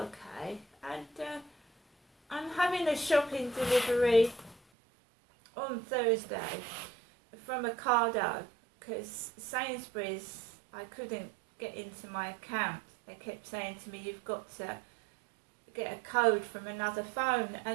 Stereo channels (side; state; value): left; drops out; at 4.6 s